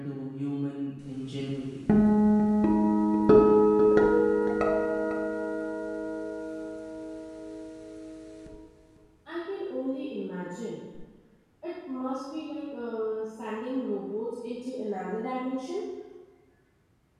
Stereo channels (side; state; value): both; identical; correlation 1.00